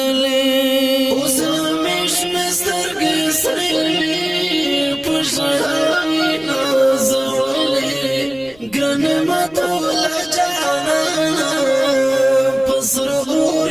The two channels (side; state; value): left; noise; rumble, 28 dB below the sound